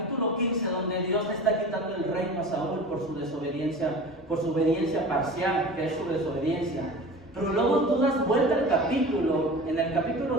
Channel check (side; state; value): both; normal; correlation 0.36